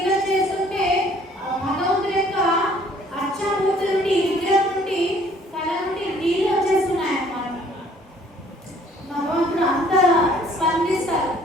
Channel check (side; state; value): both; normal; correlation 0.58